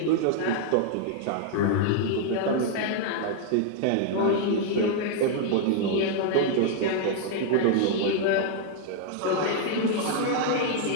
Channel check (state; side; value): different; both; correlation 0.00